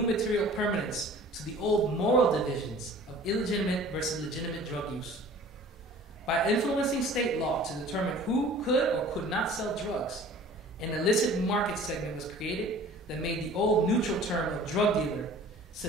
material permanence to the old moral divisions of illegitimate versus legitimate drug use. By influencing state law to determine who could or could not sell drugs, an illicit market segment was created that made the old neutral term of drug dealer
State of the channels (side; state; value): both; normal; correlation 0.46